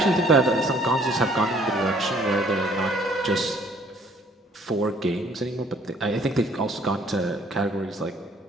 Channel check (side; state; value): both; normal; correlation 0.59